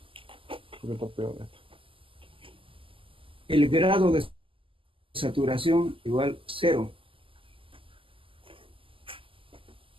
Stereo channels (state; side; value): late; left; 0.25 ms